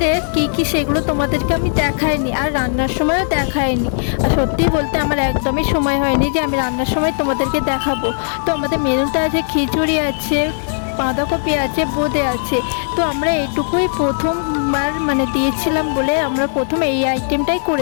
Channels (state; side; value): silent; right; digital silence